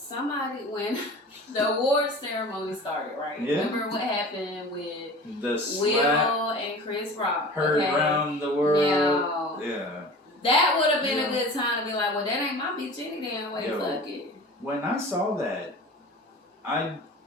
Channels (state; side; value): normal; both; correlation 0.39